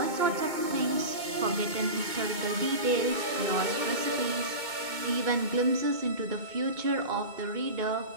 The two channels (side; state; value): left; late; 2.2 ms